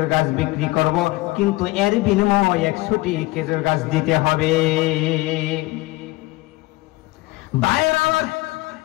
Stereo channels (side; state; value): right; quieter; 20.2 dB